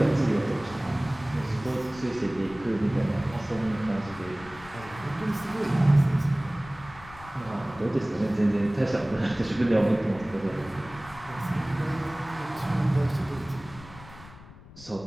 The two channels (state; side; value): noise; left; rumble, 18 dB below the sound